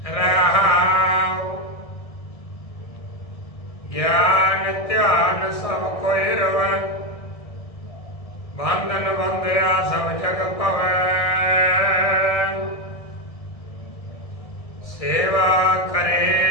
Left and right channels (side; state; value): right; late; 1.7 ms